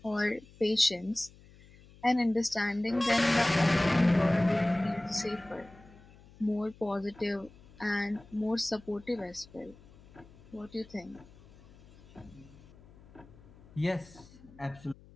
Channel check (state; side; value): noise; left; hum, 23 dB below the sound